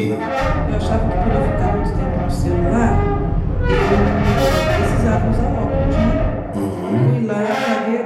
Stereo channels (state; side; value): identical; both; correlation 1.00